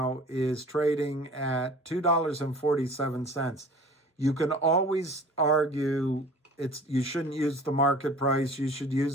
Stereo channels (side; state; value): both; normal; correlation 0.45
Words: is trading at $2.47. You can always argue you shouldn't use the market price. You should